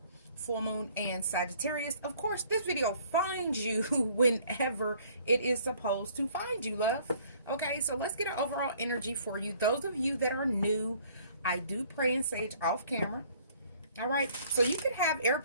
and Sagittarius. Of course, this video finds you whenever it is supposed to find you, love. Okay, so let's get an overall energy for you. Those of you that are new, I do pray and sage off camera. All right, so you could have air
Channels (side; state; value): both; inverted; correlation -0.58